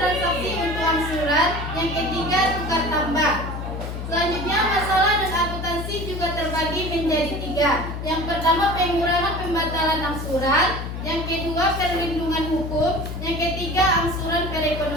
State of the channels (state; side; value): noise; left; hum, 6 dB below the sound